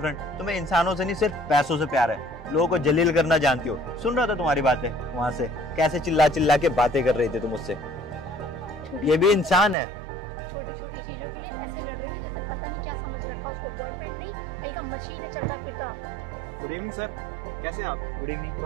तुम्हें इंसानों से नहीं सिर्फ पैसों से प्यार है। लोगों को जलील करना जानती हो। सुन रहा था तुम्हारी बातें वहां से, कैसे चिल्ला चिल्ला के बातें कर रही थी तुम मुझसे। ये भी इंसान है। छोटी छोटी चीजों के लिए ऐसे लड़ रहे थे जैसे पता नहीं क्या समझ रखा उसको। बॉयफ्रेंड नहीं, कहीं का मशीन है चलता फिरता। गुड इवनिंग सर, कैसे हैं आप? Good evening.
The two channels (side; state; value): left; drops out; at 9.8 s